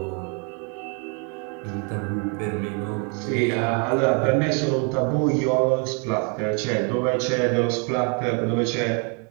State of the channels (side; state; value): left; quieter; 37.1 dB